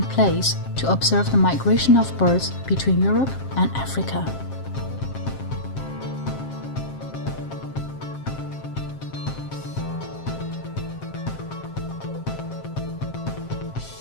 place to observe the migration of birds between Europe and Africa.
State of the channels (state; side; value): late; right; 7.5 ms